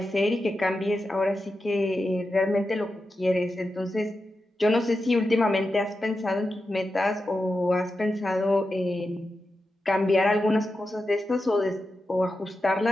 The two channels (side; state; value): both; normal; correlation 0.90